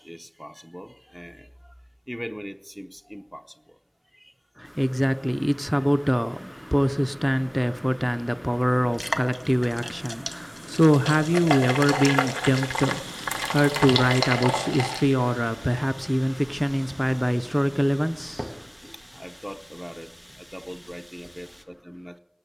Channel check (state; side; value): identical; both; correlation 1.00